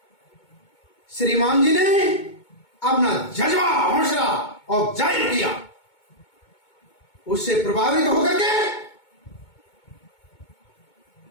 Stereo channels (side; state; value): right; late; 2.2 ms